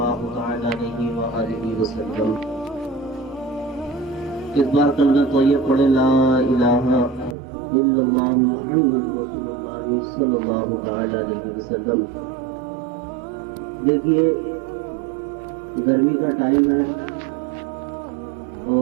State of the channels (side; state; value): left; drops out; at 7.4 s